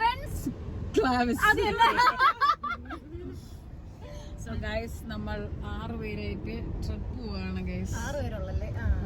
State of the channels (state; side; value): identical; both; correlation 1.00